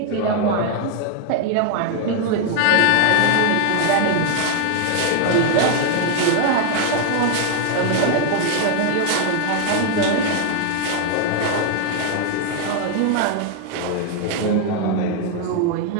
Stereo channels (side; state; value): both; different; correlation 0.00